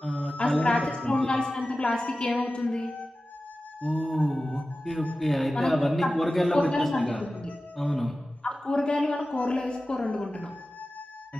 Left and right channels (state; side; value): normal; both; correlation 0.95